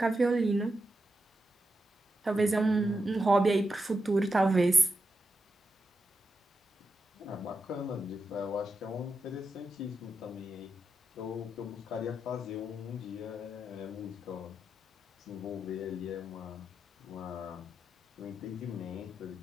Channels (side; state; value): both; normal; correlation 0.87